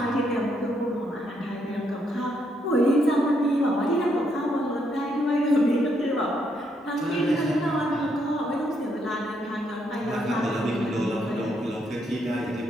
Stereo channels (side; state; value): both; normal; correlation 0.75